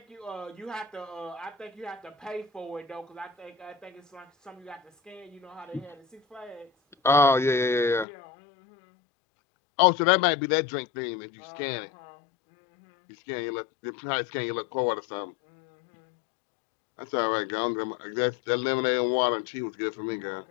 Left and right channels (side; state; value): right; drops out; at 8.1 s